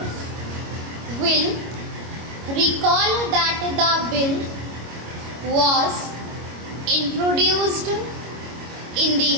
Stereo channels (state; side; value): late; left; 25 ms